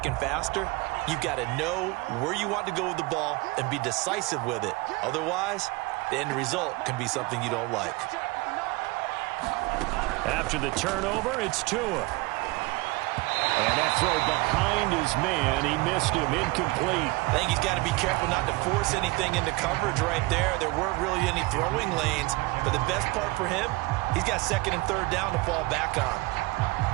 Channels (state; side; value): quieter; left; 23.1 dB